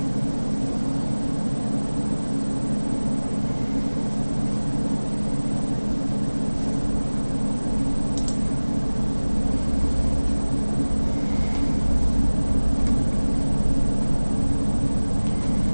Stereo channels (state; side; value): inverted; both; correlation -1.00